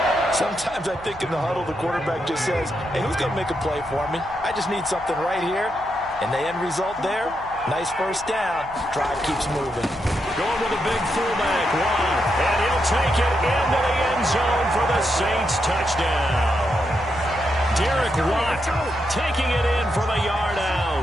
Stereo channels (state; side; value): noise; right; hum, 20 dB below the sound